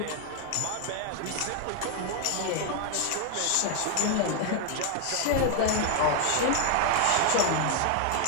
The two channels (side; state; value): both; different; correlation 0.00